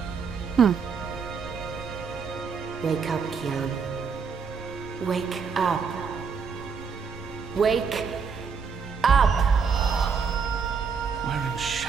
Wake up, Kian. Wake up. Wake up! Where in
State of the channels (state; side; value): quieter; left; 5.8 dB